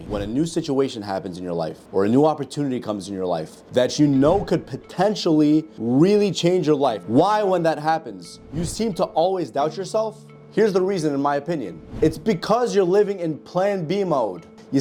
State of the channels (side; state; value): both; identical; correlation 1.00